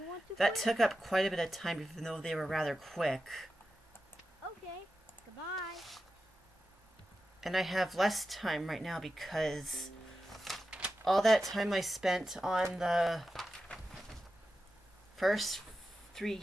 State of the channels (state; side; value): normal; both; correlation 0.92